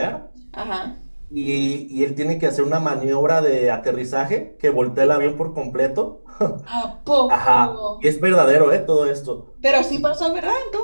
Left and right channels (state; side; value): inverted; both; correlation -1.00